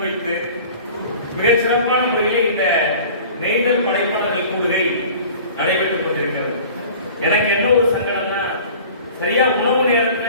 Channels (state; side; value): inverted; both; correlation -0.44